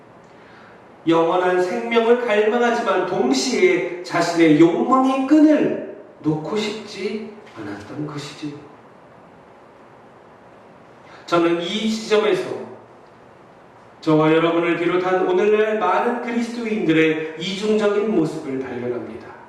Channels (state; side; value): identical; both; correlation 1.00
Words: 영원한 생명을 갈망하지만 동시에 자신의 욕망의 끈을 놓고 싶지 않았던 것이지요. 저는 이 지점에서 저와 여러분을 비롯한 오늘날 많은 그리스도인들의 이중적인 모습을 발견합니다.